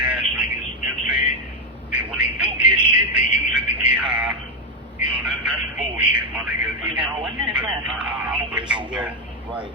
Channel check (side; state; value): both; normal; correlation 0.04